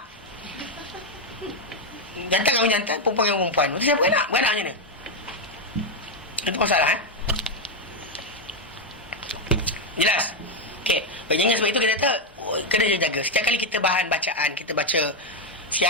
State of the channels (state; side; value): normal; both; correlation 0.03